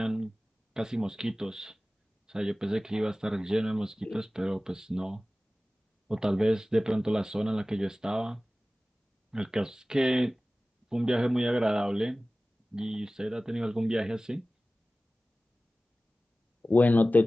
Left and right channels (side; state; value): both; normal; correlation 0.97